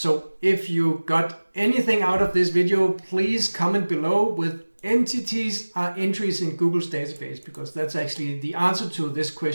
if you got anything out of this video, please comment below with entities are entries in Google's database, because that's actually the answer to this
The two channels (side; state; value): both; inverted; correlation -1.00